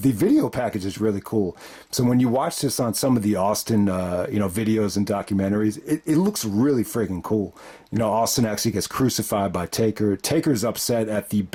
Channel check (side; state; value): both; identical; correlation 1.00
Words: video package is really cool. So when you watch this on some of the Austin videos and documentaries, it looks really freaking cool. Austin actually gets crucified by Taker. Taker's upset at the